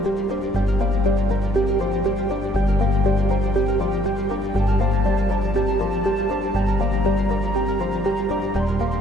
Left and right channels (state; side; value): normal; both; correlation 0.63